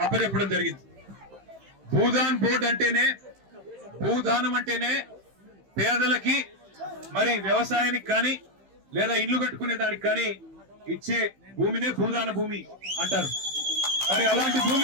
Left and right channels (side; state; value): left; late; 15 ms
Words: అప్పచెప్పడం జరిగింది. భూదాన్ బోర్డు అంటేనే, భూదానం అంటేనే పేదలకి మరి వ్యవసాయానికి కానీ లేదా ఇల్లు కట్టుకునే దానికి కానీ ఇచ్చే భూమినే భూదాన భూమి అంటారు. మరి అలాంటి